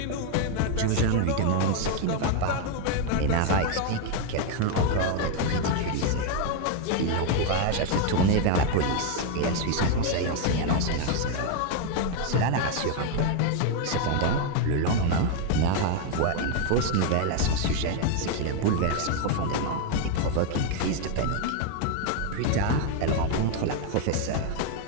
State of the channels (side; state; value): both; different; correlation 0.01